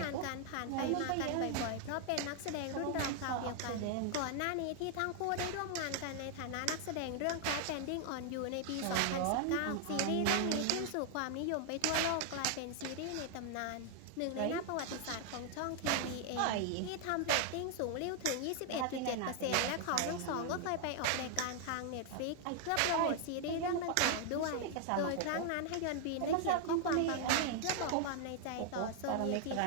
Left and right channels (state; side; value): different; both; correlation 0.00